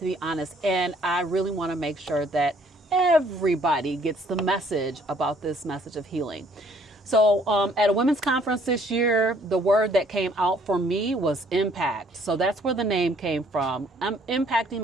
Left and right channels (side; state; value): both; normal; correlation 0.62